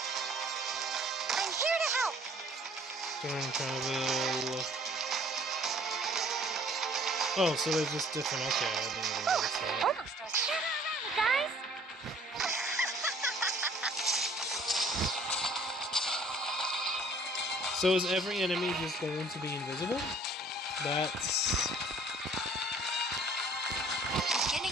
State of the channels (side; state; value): both; normal; correlation 0.54